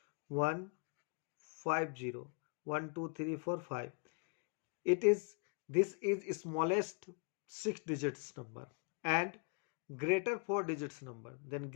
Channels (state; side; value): quieter; right; 39.2 dB